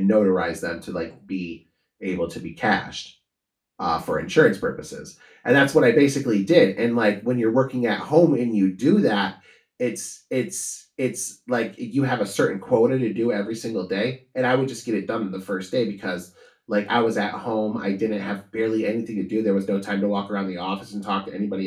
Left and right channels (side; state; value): both; identical; correlation 1.00